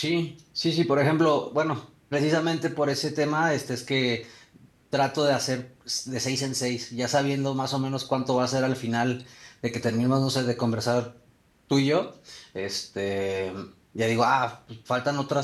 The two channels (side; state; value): both; identical; correlation 1.00